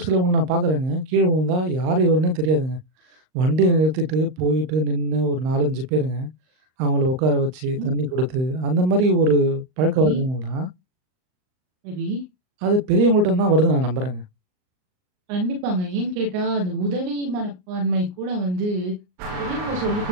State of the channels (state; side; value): late; left; 39 ms